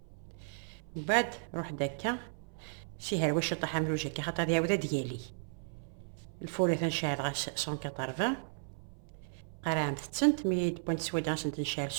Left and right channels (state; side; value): silent; left; 55 dB below the other